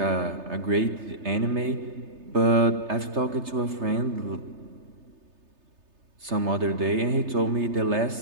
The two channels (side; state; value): left; late; 3.3 ms